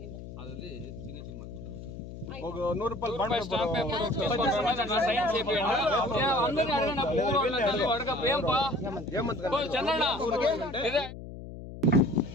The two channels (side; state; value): left; noise; hum, 12 dB below the sound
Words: ಅದರಲ್ಲಿ ಸಿಗ್ನೇಚರ್ ಮಾಡ್ಕೊಡ್ತಾರೆ. ఒక 100 రూపాయలు బాండ్ పేపర్ అందరినీ అడగండి.